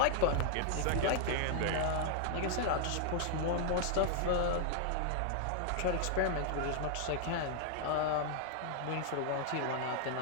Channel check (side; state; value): both; different; correlation 0.00